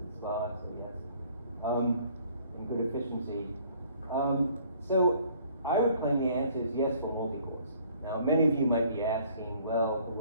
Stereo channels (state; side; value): inverted; both; correlation -0.58